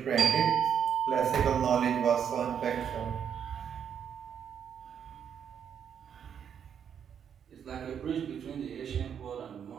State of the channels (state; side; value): quieter; left; 8.1 dB